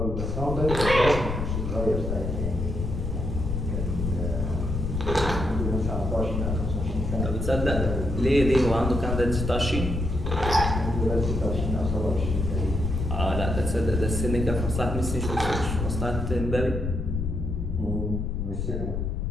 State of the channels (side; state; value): left; noise; rumble, 2 dB below the sound